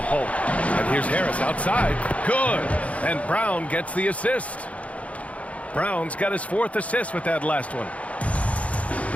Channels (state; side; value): late; right; 0.065 ms